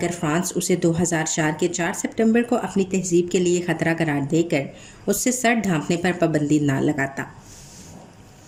फ्रांस उसे 2004 के 4 सितंबर को अपनी तहजीब के लिए ख़तरा करार देकर उससे सर ढांपने पर पाबंदी ना लगाता।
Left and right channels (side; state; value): both; identical; correlation 1.00